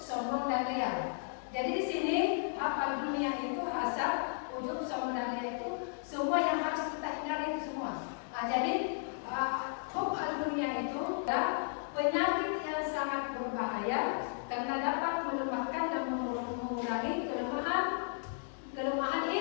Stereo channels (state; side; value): silent; right; digital silence